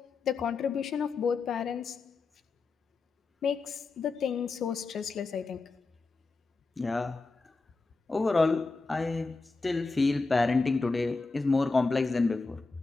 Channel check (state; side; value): quieter; right; 3.9 dB